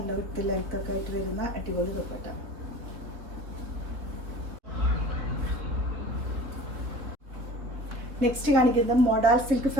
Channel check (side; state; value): left; late; 3.4 ms